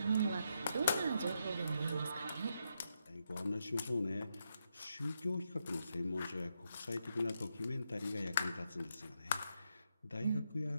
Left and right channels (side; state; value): both; inverted; correlation -0.82